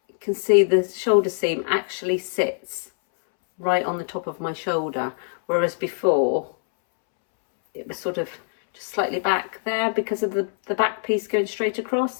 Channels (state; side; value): silent; right; 63 dB below the other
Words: you can see the shoulder seam actually sits right on the top of my shoulder, whereas before it was sort of just slightly back there because of the back piece going straight